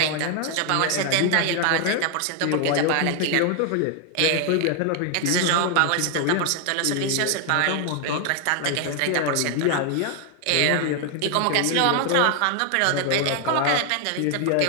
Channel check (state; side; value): different; both; correlation 0.00